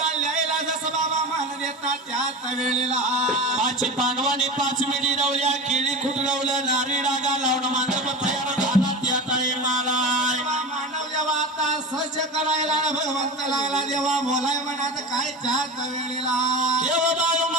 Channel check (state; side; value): normal; both; correlation 0.26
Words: ल्यायला, जसं बाबा मान देतात त्याच वेळेला. पाच पांडवांनी 5 मिडी रवल्या, केळी खुटरवलं, नारी डागा लावून मांडप तयार झाला त्या टाईमाला. मानव देवा आता सज्ज करायला, भगवंत लागला देवा बोलाय म्हणत काय त्याच वेळेला. देव बाळू